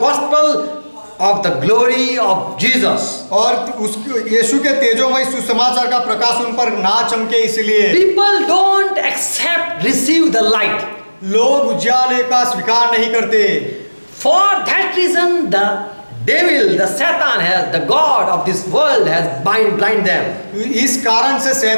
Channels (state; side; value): inverted; both; correlation -1.00